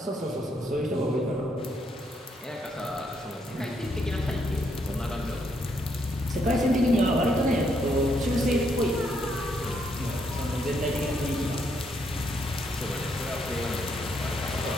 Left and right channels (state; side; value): normal; both; correlation 0.75